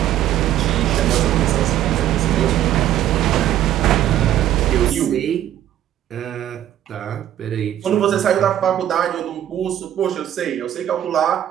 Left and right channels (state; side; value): quieter; left; 11.8 dB